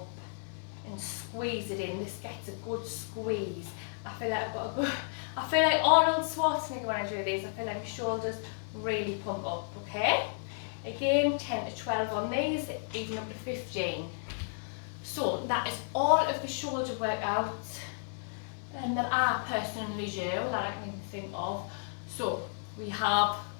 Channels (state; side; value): silent; right; 56 dB below the other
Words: and squeeze it in. This gets a good squeeze. I feel like Arnold Schwarzenegger when I do these. I feel like my shoulders really pump up, okay? Again, 10 to 12 on these, even up to 15. So that is all of the shoulder workouts that I personally do, that I can even think of. So we have